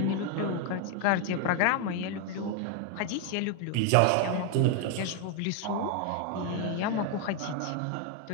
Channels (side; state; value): both; different; correlation 0.01